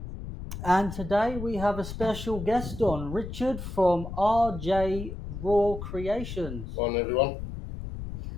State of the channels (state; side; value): noise; left; rumble, 8 dB below the sound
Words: and today we have a special guest on, Richard from RJ Raw Creations. Morning, everyone.